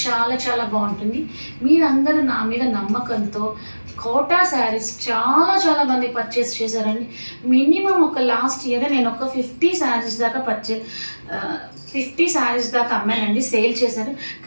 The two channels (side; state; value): both; inverted; correlation -1.00